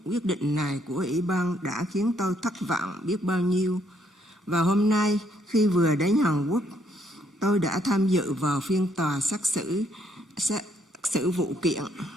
Quyết định này của Ủy ban đã khiến tôi thất vọng biết bao nhiêu. Và hôm nay khi vừa đến Hàn Quốc, tôi đã tham dự vào phiên tòa xét xử vụ kiện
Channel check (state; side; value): normal; both; correlation 0.70